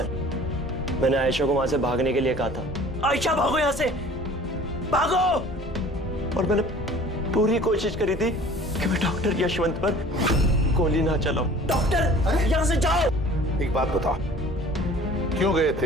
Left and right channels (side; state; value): both; normal; correlation 0.47